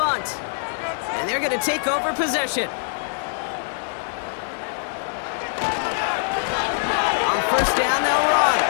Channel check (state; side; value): silent; right; digital silence